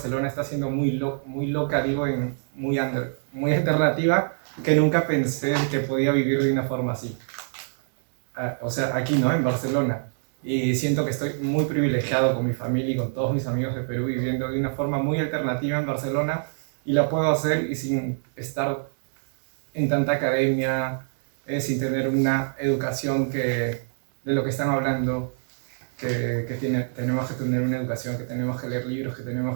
está siendo muy loca, digo, muy alternativa, que nunca pensé que podía vivir de una forma así. O sea, aquí, ¿no? En Barcelona. Y siento que estoy muy privilegiado con mi familia y con todos mis amigos de Perú, viviendo de una forma muy alternativa en Barcelona, y la puedo hacer y sin estar en tanta academia, sin tener una educación de lo que están hablando, que tenemos que tener una educación, que tenemos que leer libros, que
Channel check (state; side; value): silent; left; digital silence